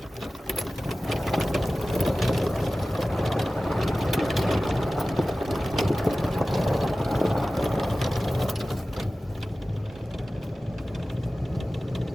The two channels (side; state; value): both; normal; correlation 0.96